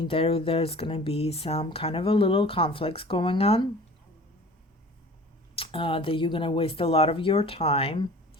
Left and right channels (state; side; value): normal; both; correlation 0.44